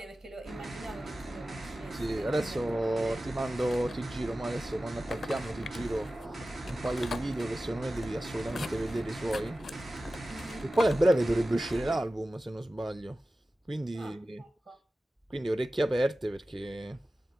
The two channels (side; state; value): both; normal; correlation 0.95